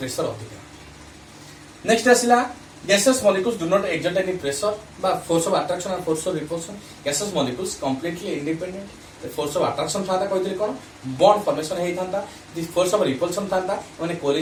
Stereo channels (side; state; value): both; identical; correlation 1.00